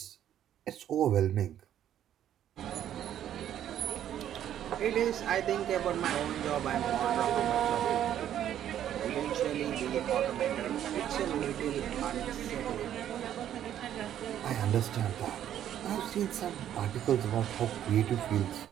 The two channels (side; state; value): left; quieter; 10.8 dB